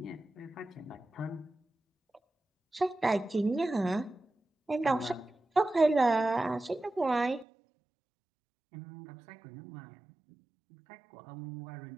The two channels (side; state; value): left; drops out; at 7.5 s